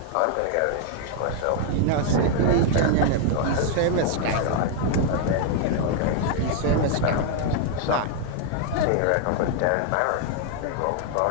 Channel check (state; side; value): different; both; correlation 0.00